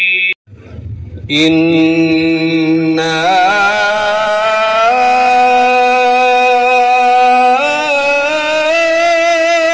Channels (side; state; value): both; identical; correlation 1.00